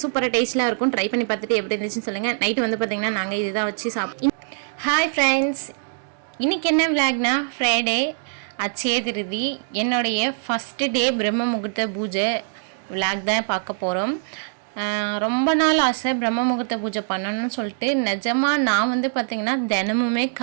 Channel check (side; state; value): left; silent; 63 dB below the other